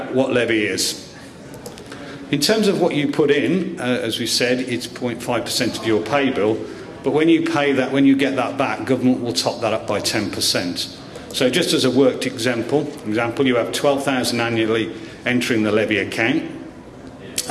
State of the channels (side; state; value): both; identical; correlation 1.00